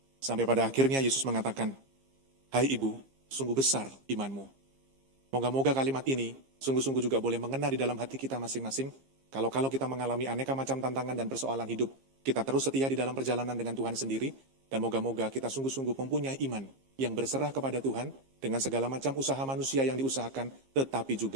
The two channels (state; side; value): late; left; 15 ms